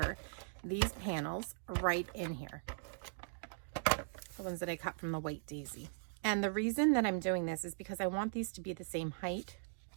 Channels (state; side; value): silent; left; digital silence